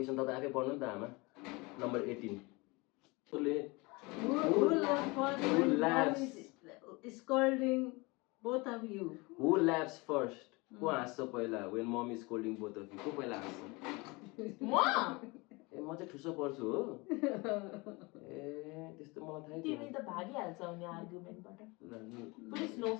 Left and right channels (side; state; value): right; quieter; 25.5 dB